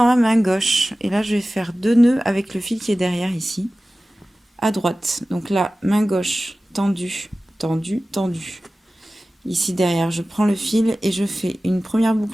ma main gauche. Et là, je vais faire 2 nœuds avec le fil qui est derrière ici, à droite. Donc là, main gauche, tendue, tendue, tendue. Ici derrière, je prends le fil et je fais une première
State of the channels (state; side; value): normal; both; correlation 0.96